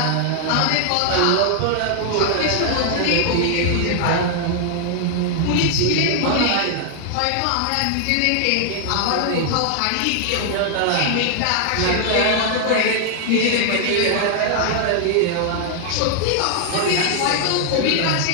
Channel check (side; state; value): both; different; correlation 0.00